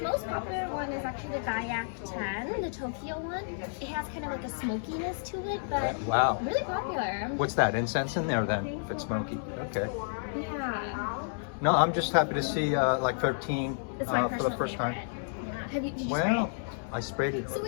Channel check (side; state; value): right; silent; digital silence